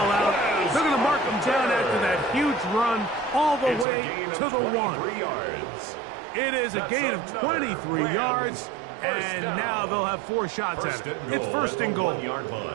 out. They're going to mark him down after that huge run all the It's way a gain to of the 1. 23 yards. It is a That's gain of another 23 Rams yards. first And down. now they'll have 4 shots First at it. and It's goal 1st at and the goal. 1-yard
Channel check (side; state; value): left; drops out; at 3.9 s